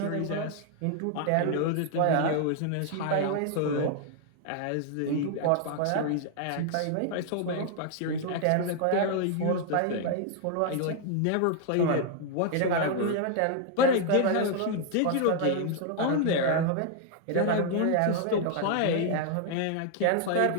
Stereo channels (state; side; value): different; both; correlation 0.00